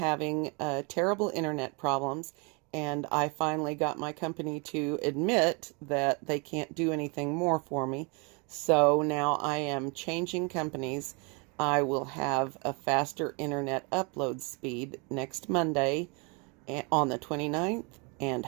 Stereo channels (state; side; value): quieter; left; 32.4 dB